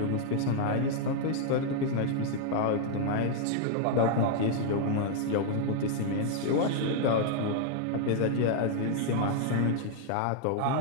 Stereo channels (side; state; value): both; different; correlation 0.00